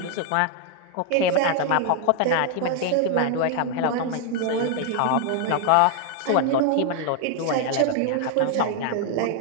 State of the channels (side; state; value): both; different; correlation 0.00